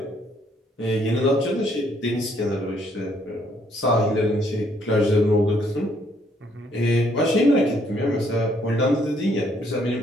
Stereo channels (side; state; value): both; normal; correlation 0.68